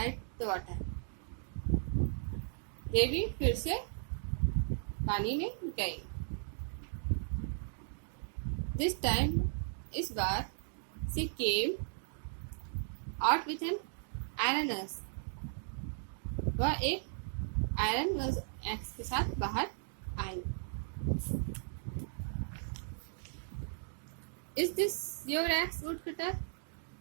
the water, देवी फिर से पानी में गई। दिस टाइम, इस बार, she came out with an iron axe, वह एक आयरन एक्स के साथ बाहर आई। Is this your axe woodcutter,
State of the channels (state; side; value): silent; left; digital silence